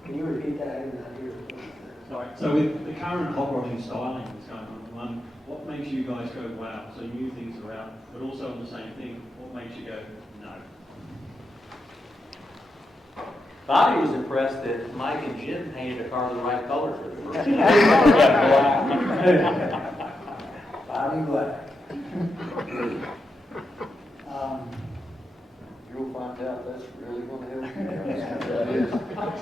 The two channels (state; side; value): normal; both; correlation 0.86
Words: Can you repeat that? I did not hear. Sorry. So with the current operating styling that's going on at the moment, what makes you guys go wow? So new things are out, but also on the same thing, what makes you go no? Bobby was impressed that Mike and Jim painted a car the right color for the first time. Bobby Black. You'll find out that's really gonna help you.